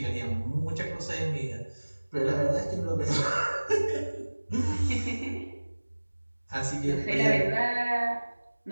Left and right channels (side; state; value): both; inverted; correlation -1.00